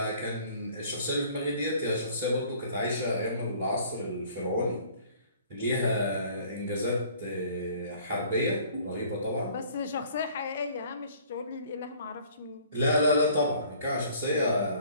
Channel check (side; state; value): both; inverted; correlation -0.54